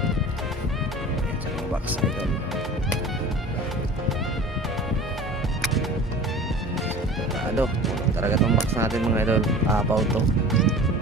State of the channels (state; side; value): normal; both; correlation 0.40